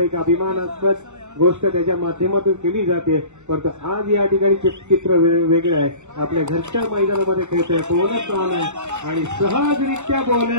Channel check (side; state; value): left; late; 0.83 ms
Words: अभिमानास्पद गोष्ट त्याच्या माध्यमातून केली जाते. परंतु आज या ठिकाणी चित्र वेगळं आहे. आपल्या घरच्या मैदानामध्ये खेळतोय. बोनस ऑन आहे आणि सहजरित्या